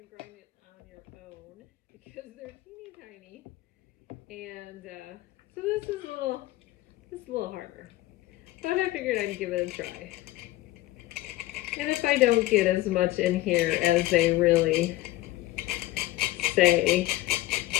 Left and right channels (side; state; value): right; quieter; 17.3 dB